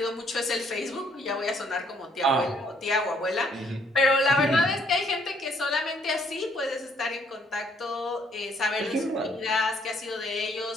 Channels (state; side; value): normal; both; correlation 0.66